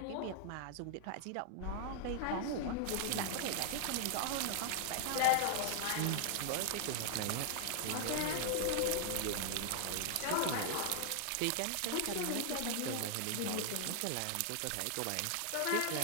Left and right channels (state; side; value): different; both; correlation 0.00